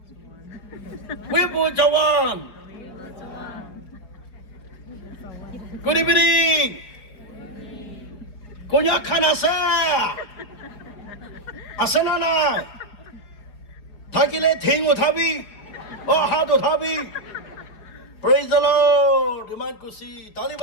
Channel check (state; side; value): late; right; 5.0 ms